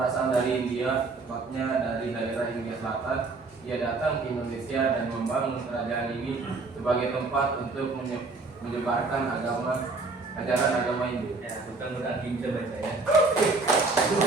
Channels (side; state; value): left; quieter; 3.8 dB